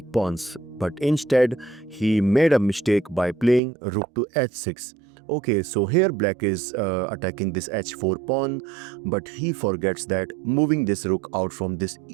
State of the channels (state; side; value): drops out; left; at 3.6 s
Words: pawns. But instead, he made a mistake by playing rook to h6. Okay, so here black is attacking this h4 pawn, but he forgets that moving this rook out from this